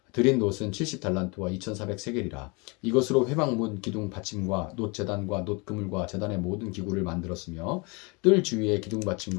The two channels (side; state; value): right; quieter; 29.0 dB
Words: 드린 놋은 70달란트와 2400세겔이라. 이것으로 회막문 기둥 받침과 놋 제단과 놋 그물과 제단의 모든 기구를 만들었으며 뜰 주위의 기둥